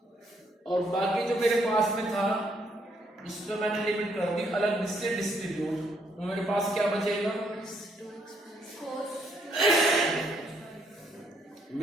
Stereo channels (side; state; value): both; normal; correlation 0.71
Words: और बाकी जो मेरे पास में था उस पर मैंने लिमिट कर दी अलग से डिस्ट्रीब्यूट। तो मेरे पास क्या बचेगा,